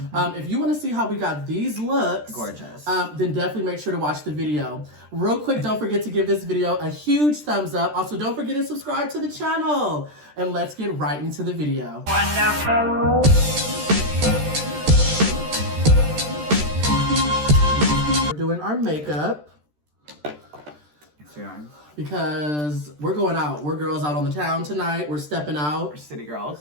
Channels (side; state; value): left; late; 13 ms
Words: If you want to see how we got these looks, gorgeous, then definitely make sure to watch the video. Real quick, don't forget to give this video a huge thumbs up. Also, don't forget to subscribe to the channel. And let's get right into the video. Wonderful. Doing our makeup because we're going out. We're girls out on the town tonight. We're stepping out. We're city